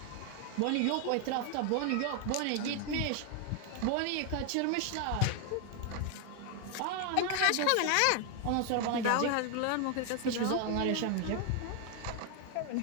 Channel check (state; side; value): different; both; correlation 0.01